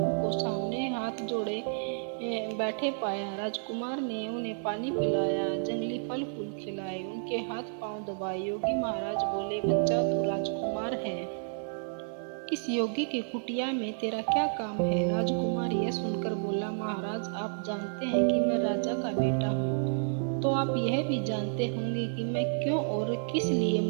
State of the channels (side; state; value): left; silent; 57 dB below the other